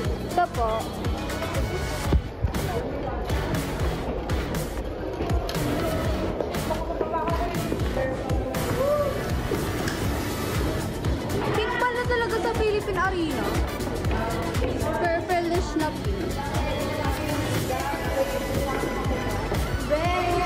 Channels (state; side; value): identical; both; correlation 1.00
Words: Ito po. Pink pala talaga sa Philippine Arena. Purple-ish na pink.